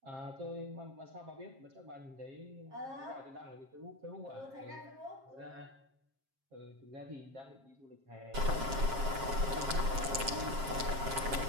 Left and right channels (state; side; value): late; left; 7.5 ms